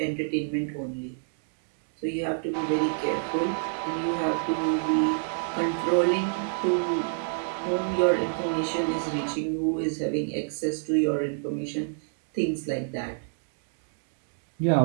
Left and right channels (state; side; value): silent; left; digital silence